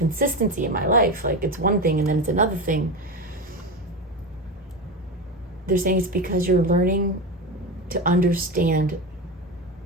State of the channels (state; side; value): normal; both; correlation 0.20